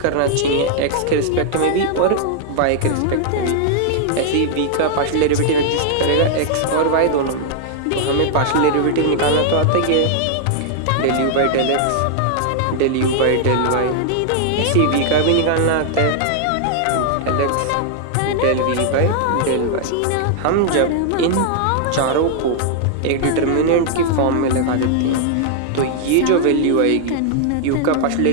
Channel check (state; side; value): different; both; correlation -0.01